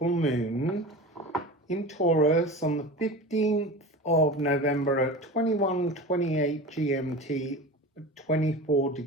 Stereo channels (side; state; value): both; normal; correlation 0.32